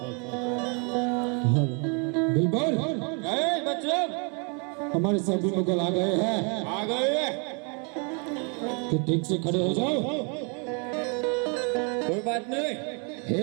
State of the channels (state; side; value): quieter; left; 36.8 dB